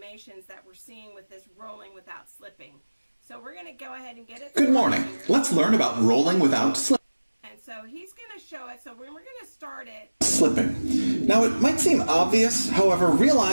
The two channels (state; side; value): inverted; both; correlation -1.00